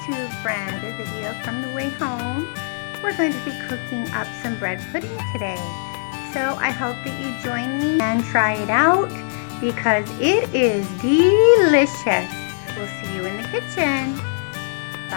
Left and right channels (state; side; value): silent; right; digital silence